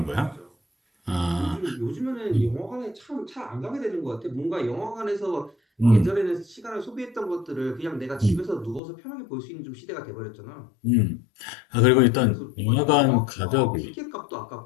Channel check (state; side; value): drops out; right; at 8.8 s